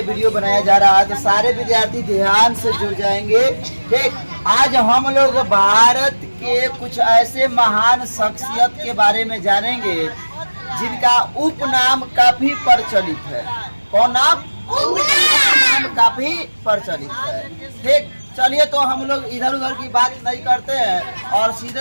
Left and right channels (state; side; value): inverted; both; correlation -1.00